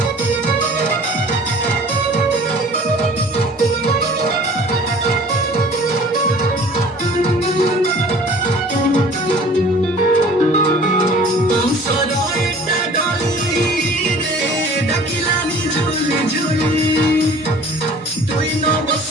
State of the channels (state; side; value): normal; both; correlation 0.48